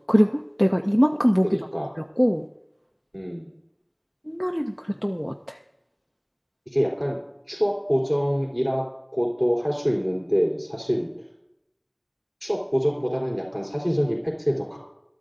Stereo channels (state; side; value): identical; both; correlation 1.00